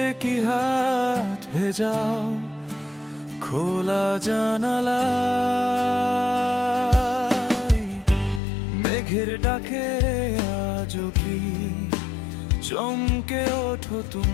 কি হাত ভেজাও খোলা জানালায়। মেঘের ডাকে আজও কি চমকে ওঠো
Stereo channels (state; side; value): drops out; right; at 8.4 s